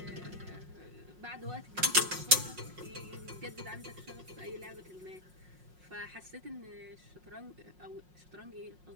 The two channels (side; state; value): left; late; 5.5 ms